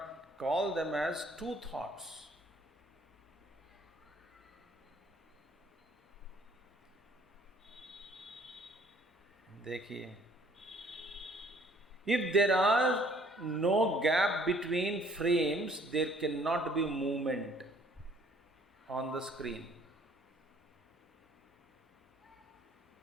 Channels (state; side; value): normal; both; correlation 0.59